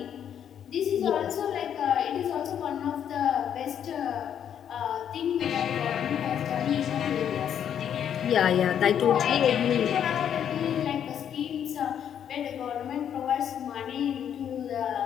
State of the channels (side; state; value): right; quieter; 9.1 dB